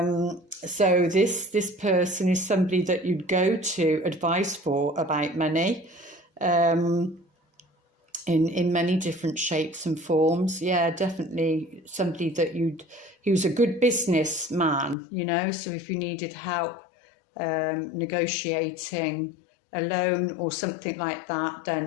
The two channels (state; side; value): drops out; right; at 15.0 s